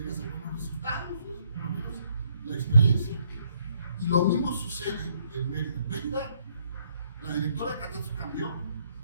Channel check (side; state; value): both; inverted; correlation -0.69